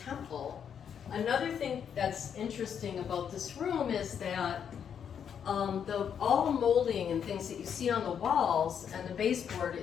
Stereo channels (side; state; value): right; quieter; 8.0 dB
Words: Another thing that's interesting about this room is that all the molding and things that you see on the walls and the baseboard